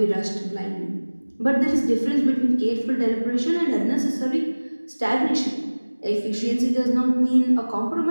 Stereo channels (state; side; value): inverted; both; correlation -1.00